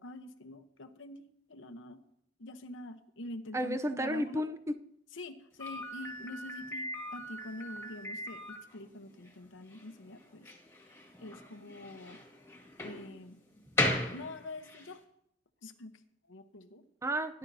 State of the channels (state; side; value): normal; both; correlation 0.39